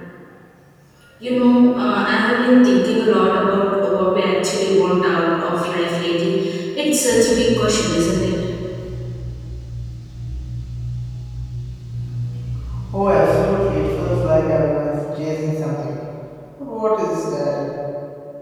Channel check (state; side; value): identical; both; correlation 1.00